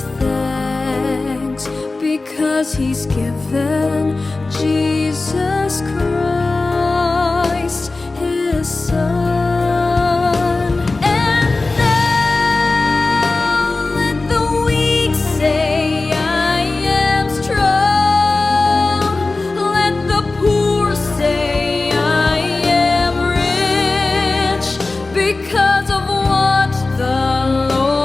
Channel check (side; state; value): right; quieter; 3.4 dB